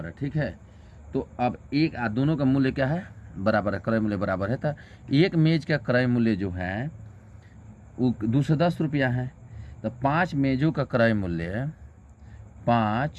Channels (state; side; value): identical; both; correlation 1.00